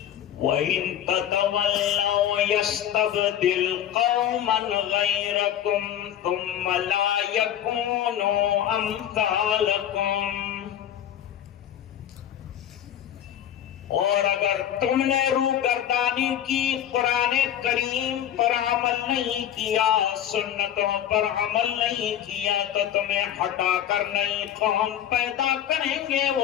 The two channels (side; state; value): right; quieter; 10.5 dB